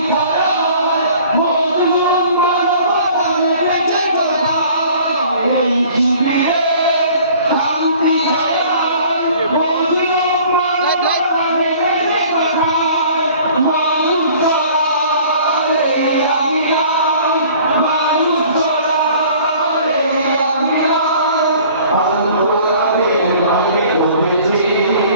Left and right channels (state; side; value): inverted; both; correlation -0.51